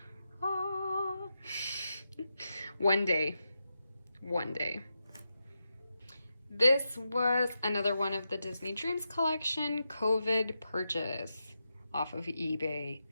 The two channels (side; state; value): both; inverted; correlation -0.88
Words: ah. One day. This was another one of the Disney Dreams collection COVID purchase off of eBay.